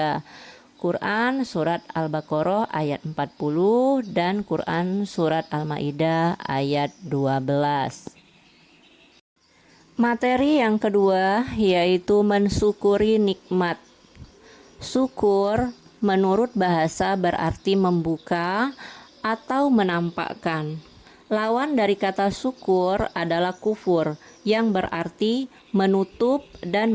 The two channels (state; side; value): identical; both; correlation 1.00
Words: Quran Surat Al-Baqarah ayat 40 dan Quran Surat Al-Maidah ayat 12. Materi yang kedua yaitu mensyukuri nikmat. Syukur menurut bahasa berarti membuka atau menampakkan. Lawan dari kata syukur adalah kufur yang berarti menutup